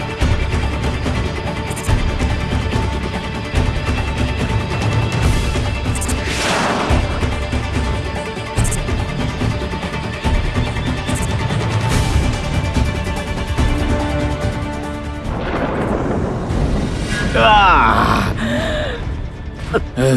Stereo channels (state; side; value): identical; both; correlation 1.00